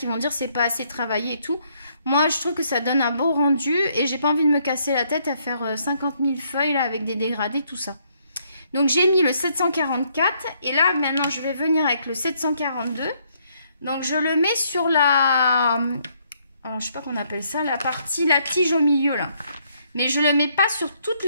vont dire c'est pas assez travaillé et tout. Moi, je trouve que ça donne un beau rendu et j'ai pas envie de me casser la tête à faire 50 000 feuilles là, avec des dégradés, tout ça. Donc, j'ai mis le 744 et là, maintenant, je vais venir avec le 742. Donc, je le mets sur la... alors je sais pas qu'on appelle ça, la tige au milieu là. Mais je le mets pas sur toute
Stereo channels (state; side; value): inverted; both; correlation -0.70